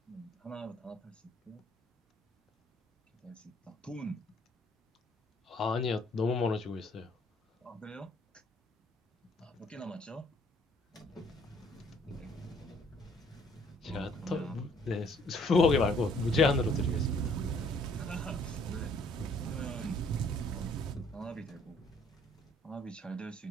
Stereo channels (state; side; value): normal; both; correlation 0.62